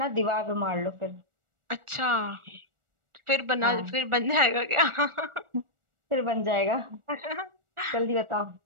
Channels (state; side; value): late; left; 1.4 ms